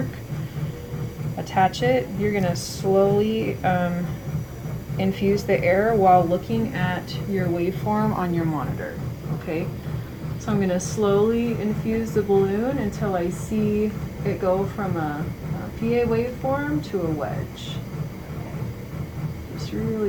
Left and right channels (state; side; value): identical; both; correlation 1.00